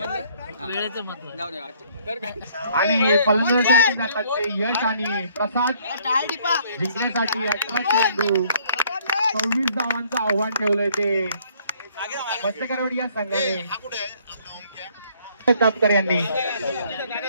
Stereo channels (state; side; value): inverted; both; correlation -0.62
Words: आणि फलंदाजांसाठी जातात ते यश आणि प्रसाद. जिंकण्यासाठी 18 चेंडू 26 धावांचं आव्हान ठेवलंय ते मत्स्यकरवाडी या संघाने. तापकर यांनी